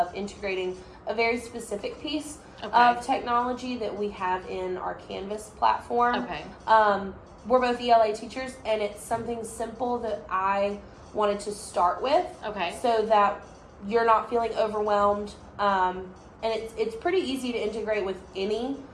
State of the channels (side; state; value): both; identical; correlation 1.00